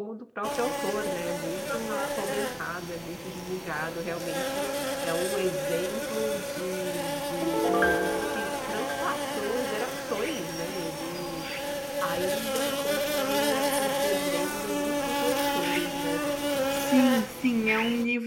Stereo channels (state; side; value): identical; both; correlation 1.00